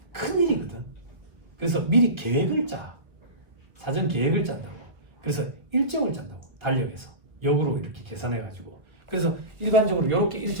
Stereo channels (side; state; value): left; late; 1.3 ms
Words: 큰일이거든. 그래서 미리 계획을 짜. 사전 계획을 짠다고. 그래서 일정을 짠다고. 달력에서. 역으로 이렇게 계산해가지고. 그래서 일반적으로 이렇게